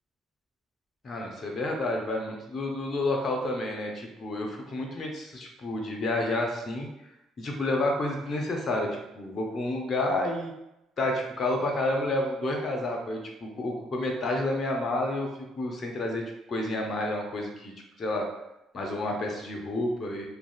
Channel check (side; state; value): both; normal; correlation 0.65